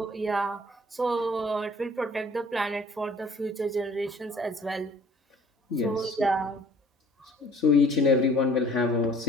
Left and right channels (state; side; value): normal; both; correlation 0.54